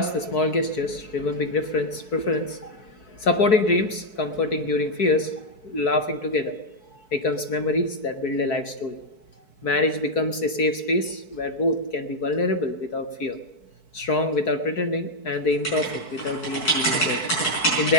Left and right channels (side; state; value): right; late; 4.6 ms